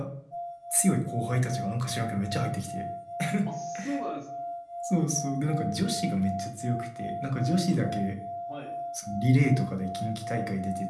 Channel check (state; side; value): identical; both; correlation 1.00